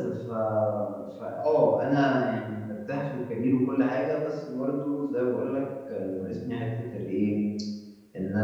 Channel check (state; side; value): identical; both; correlation 1.00